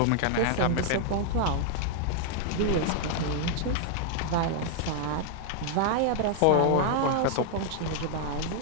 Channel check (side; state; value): both; different; correlation 0.00